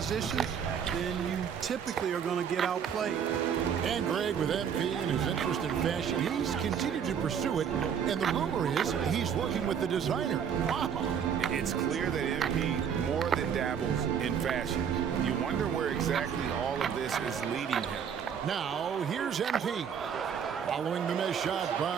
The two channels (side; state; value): left; quieter; 7.7 dB